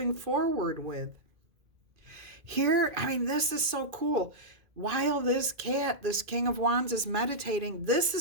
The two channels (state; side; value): late; left; 2.4 ms